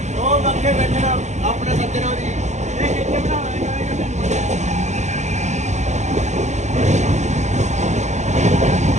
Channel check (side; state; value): left; late; 0.34 ms